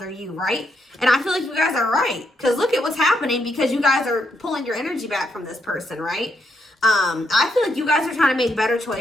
you, right? And I feel like you guys are right, because look at what's happening, because you guys are pulling your energy back from this person, right? I feel like you guys are trying to make better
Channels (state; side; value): normal; both; correlation 0.78